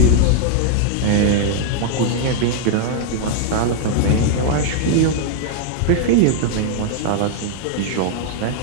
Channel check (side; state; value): both; different; correlation 0.00